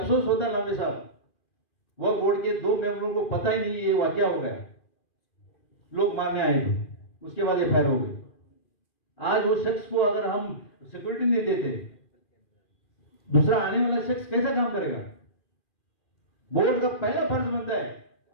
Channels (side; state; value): right; late; 2.4 ms